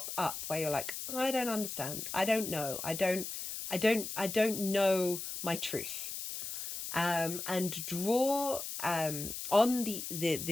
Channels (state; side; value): noise; left; hiss, 6 dB below the sound